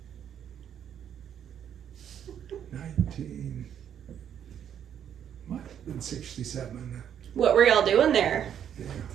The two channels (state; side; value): quieter; left; 9.2 dB